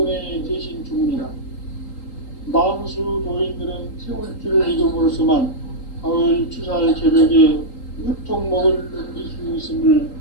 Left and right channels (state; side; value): late; right; 3.8 ms